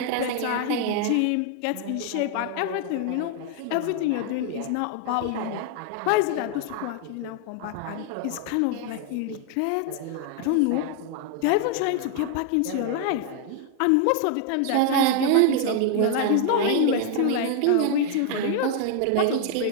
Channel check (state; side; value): different; both; correlation 0.00